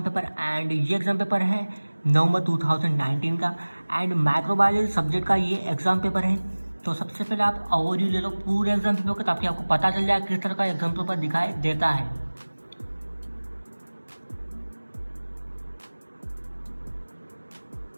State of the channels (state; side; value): inverted; both; correlation -1.00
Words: पेपर एंड ये एग्जाम पेपर है नवंबर 2019 का एंड माइक्रोबायोलॉजी सब्जेक्ट का ये एग्जाम पेपर है। तो सबसे पहले आप ओवरव्यू ले लो पूरे एग्जाम पेपर का ताकि आपको पता चल जाए किस तरह का एग्जाम पेपर दिखाई देता है।